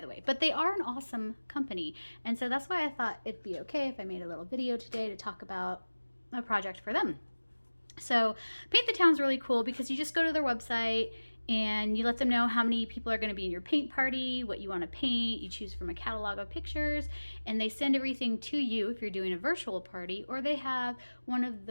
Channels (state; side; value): inverted; both; correlation -1.00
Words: the way, but they are an awesome company. And so that's why I thought it'd be okay if I made a little video today to talk about a project for them. So Paint the Town's really cool because you just go to their website and you let them know how many people are going to be in your paint party, what you want to paint. You choose from a catalog of pictures, and they send everything to you if you're doing a virtual party, or they have one of